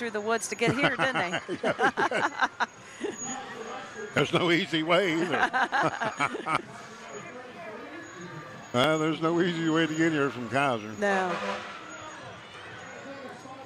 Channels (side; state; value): both; identical; correlation 1.00